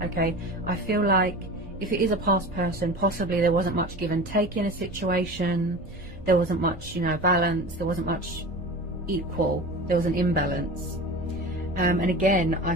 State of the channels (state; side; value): noise; right; rumble, 15 dB below the sound